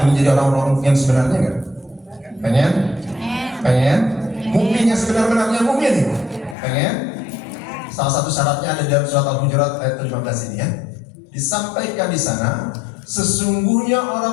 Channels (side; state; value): right; drops out; at 6.6 s